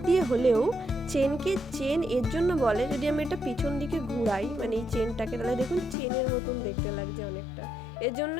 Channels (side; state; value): right; drops out; at 6.0 s